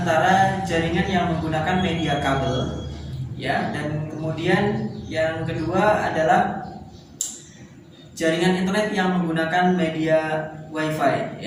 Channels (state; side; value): identical; both; correlation 1.00